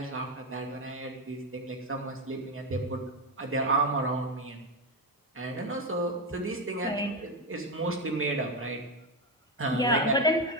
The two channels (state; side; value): normal; both; correlation 0.11